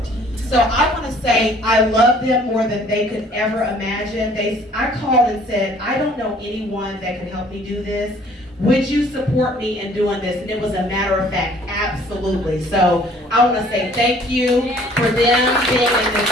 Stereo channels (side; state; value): both; normal; correlation 0.56